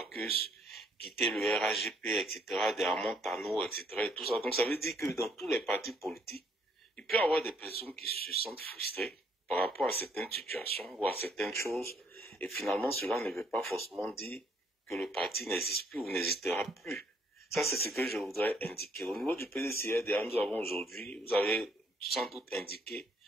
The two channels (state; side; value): normal; both; correlation 0.67